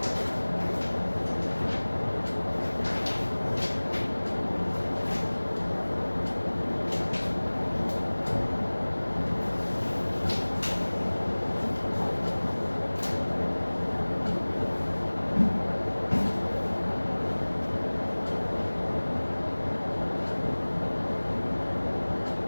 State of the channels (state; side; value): inverted; both; correlation -1.00